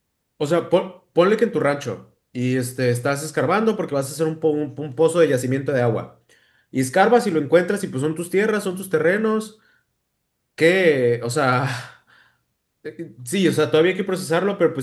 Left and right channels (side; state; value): both; identical; correlation 1.00